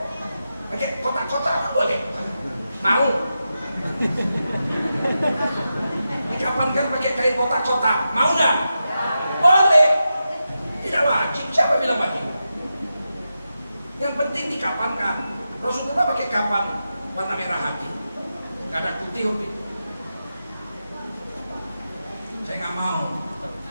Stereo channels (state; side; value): inverted; both; correlation -0.89